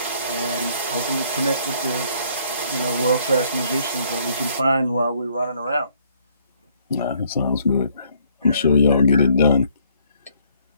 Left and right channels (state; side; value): inverted; both; correlation -0.65